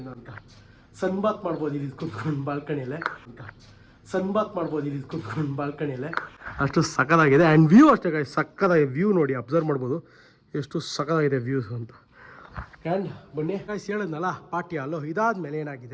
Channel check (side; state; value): both; identical; correlation 1.00